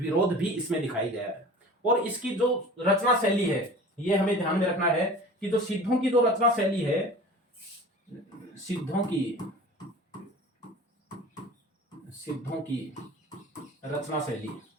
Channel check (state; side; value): normal; both; correlation 0.40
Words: भी इसमें दिखाई गया है। और इसकी जो रचना शैली है, ये हमें ध्यान में रखना है कि जो सिद्धों की जो रचना शैली है, सिद्धों की रचना